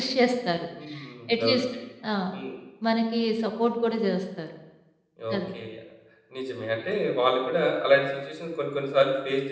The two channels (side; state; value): both; identical; correlation 1.00